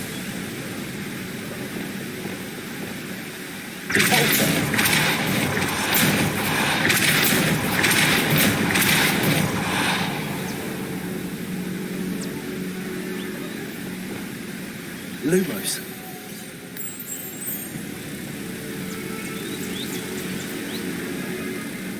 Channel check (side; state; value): both; identical; correlation 1.00